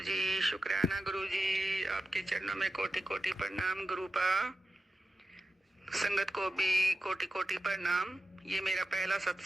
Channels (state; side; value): normal; both; correlation 0.92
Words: जी, शुक्राना गुरु जी, आपके चरणों में कोटि कोटि प्रणाम गुरुपा। संगत को भी कोटि कोटि प्रणाम। ये मेरा पहला